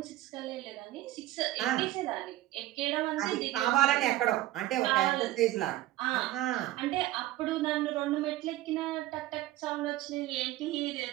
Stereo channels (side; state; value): left; quieter; 15.6 dB